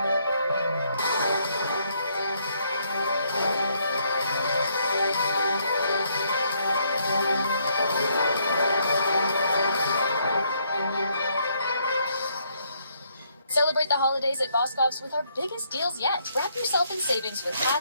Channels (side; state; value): both; inverted; correlation -0.71